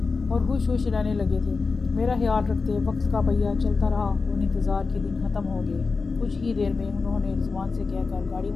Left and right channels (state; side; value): quieter; right; 4.4 dB